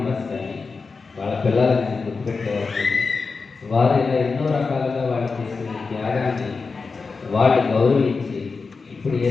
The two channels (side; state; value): right; quieter; 4.5 dB